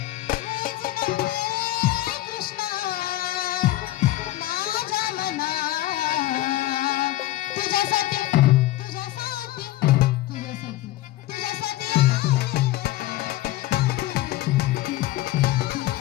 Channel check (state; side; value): quieter; right; 15.9 dB